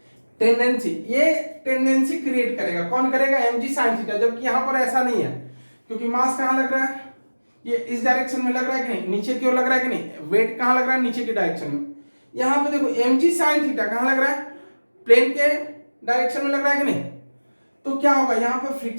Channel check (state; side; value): inverted; both; correlation -1.00